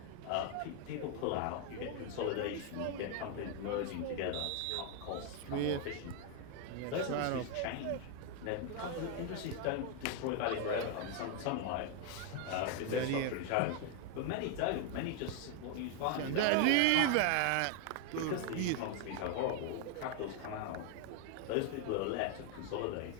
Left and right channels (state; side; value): different; both; correlation 0.01